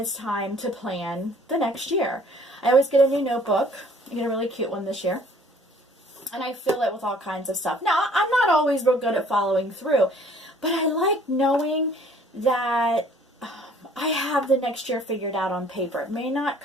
time to plan the next year. I always get a new notebook. I get a really cute one this year. And I fill it with all kinds of stuff. Now, I'm not always real good at following through, but I like knowing that I have the next year figured out on paper. It may not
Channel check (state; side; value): normal; both; correlation 0.56